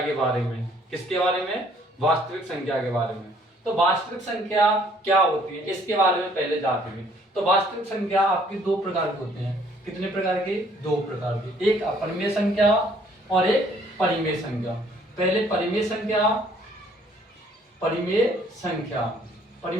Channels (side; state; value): both; normal; correlation 0.61